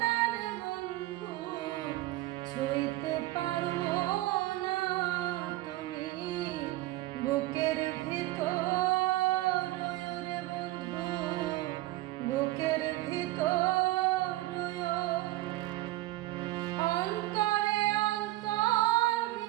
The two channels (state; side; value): quieter; left; 17.7 dB